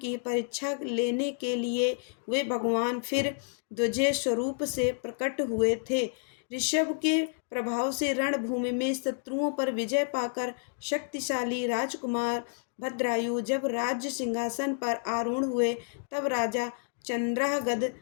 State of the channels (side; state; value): right; silent; digital silence